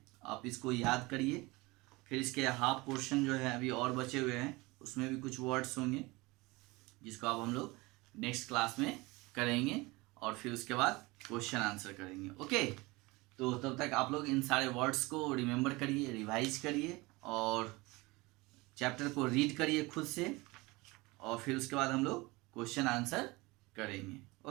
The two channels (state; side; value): quieter; left; 23.0 dB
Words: आप इसको याद करिए। फिर इसके हाफ पोर्शन जो है अभी और बचे हुए हैं, उसमें भी कुछ वर्ड्स होंगे जिसको अब हम लोग नेक्स्ट क्लास में करेंगे, और फिर उसके बाद क्वेश्चन आंसर करेंगे। ओके, तो तब तक आप लोग इन सारे वर्ड्स को रिमेंबर करिए, रिवाइज करिए, और चैप्टर को रीड करिए खुद से, और फिर उसके बाद हम लोग क्वेश्चन आंसर करेंगे।